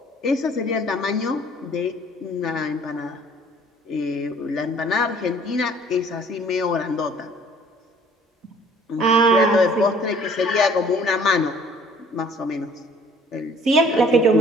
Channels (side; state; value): both; normal; correlation 0.55